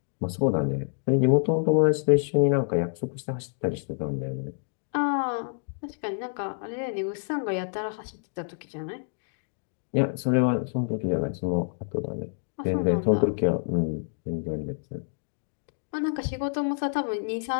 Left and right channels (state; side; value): silent; right; digital silence